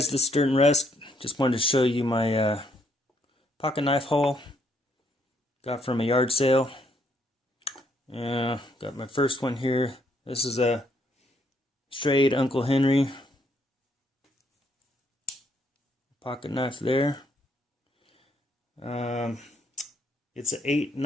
this is ℚ𝕠𝕔𝕜𝕚. Just wanted to show you my pocket knife haul. Got from a yard sale. Yeah, got my first one here. This is a straight Uncle Henry pocket knife there. It's a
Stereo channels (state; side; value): normal; both; correlation 0.71